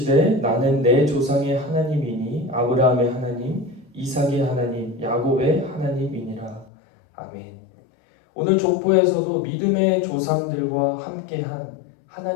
나는 내 조상의 하나님이니 아브라함의 하나님, 이삭의 하나님, 야곱의 하나님이니라. 아멘. 오늘 족보에서도 믿음의 조상들과 함께한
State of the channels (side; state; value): right; drops out; at 6.7 s